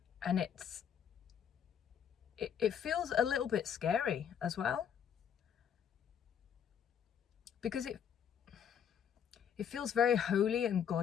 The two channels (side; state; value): right; quieter; 8.3 dB